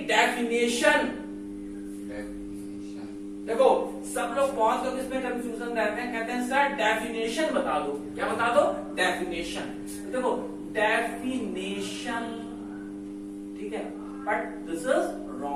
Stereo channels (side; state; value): both; identical; correlation 1.00